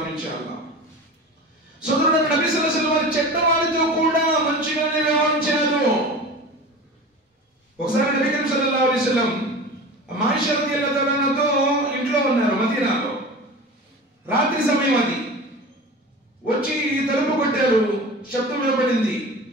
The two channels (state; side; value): normal; both; correlation 0.34